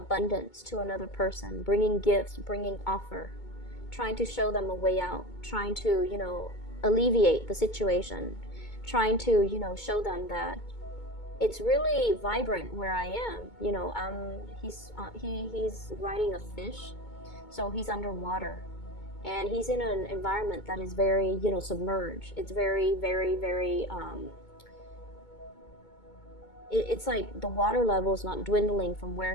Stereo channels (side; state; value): right; late; 2.2 ms